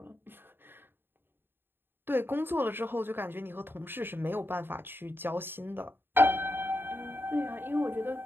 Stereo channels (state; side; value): late; left; 0.10 ms